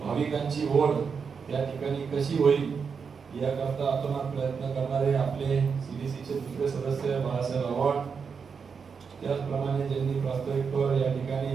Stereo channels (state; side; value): quieter; left; 5.9 dB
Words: ओढ त्या ठिकाणी कशी होईल याकरता अतोनात प्रयत्न करणारे आपले सीडीसीचे दुसरे सदस्य बाळासाहेब आव्हाड, त्याचप्रमाणे ज्यांनी प्रास्ताविकवर या